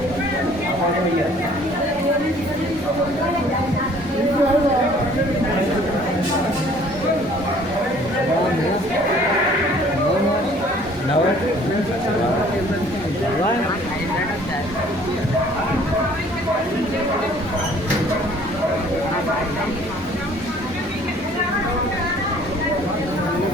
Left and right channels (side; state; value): both; normal; correlation 0.55